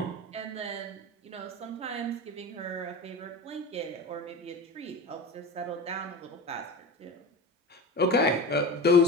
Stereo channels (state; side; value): normal; both; correlation 0.31